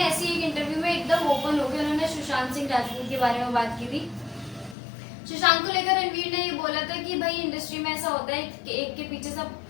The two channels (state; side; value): drops out; right; at 4.8 s